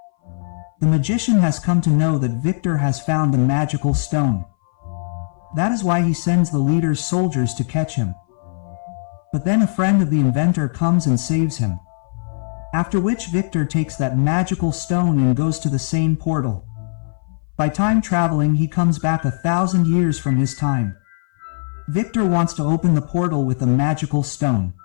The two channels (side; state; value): right; silent; 59 dB below the other